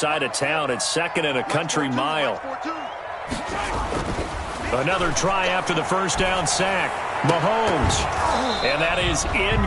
of town. It's 2nd and a country mile. Another try after the first down sack. Mahomes. And that is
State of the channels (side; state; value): both; identical; correlation 1.00